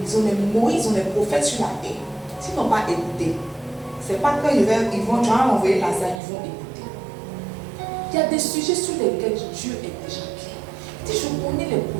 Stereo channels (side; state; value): left; drops out; at 6.2 s